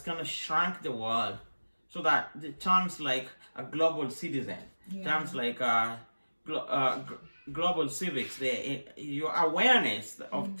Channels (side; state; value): both; inverted; correlation -1.00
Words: kind of shrunk the world, so that the terms like a global citizen, terms like global civics, your awareness of